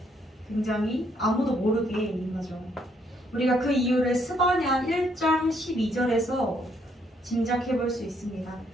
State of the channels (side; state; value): both; normal; correlation 0.71